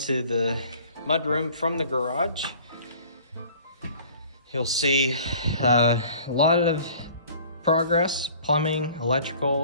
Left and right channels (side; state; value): both; inverted; correlation -0.50